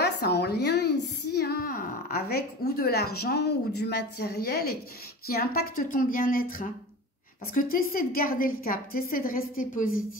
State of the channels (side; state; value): both; normal; correlation 0.33